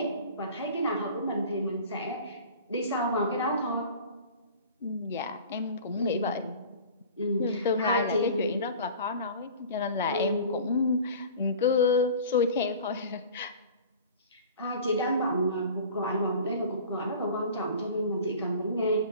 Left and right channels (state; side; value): inverted; both; correlation -0.41